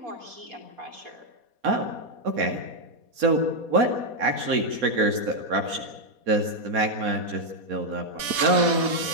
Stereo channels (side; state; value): left; late; 4.2 ms